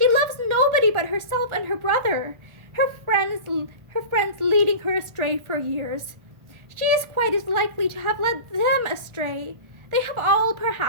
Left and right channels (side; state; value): left; late; 1.4 ms